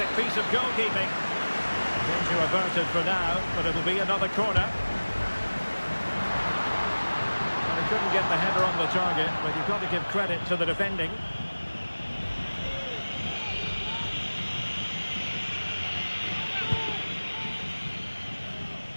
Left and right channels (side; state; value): both; inverted; correlation -1.00